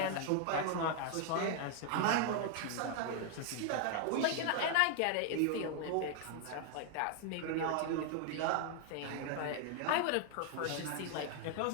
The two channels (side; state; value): both; different; correlation 0.00